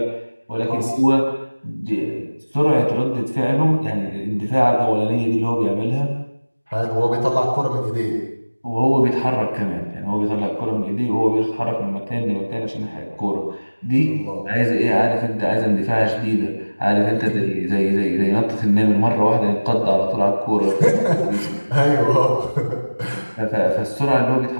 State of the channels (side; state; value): both; inverted; correlation -1.00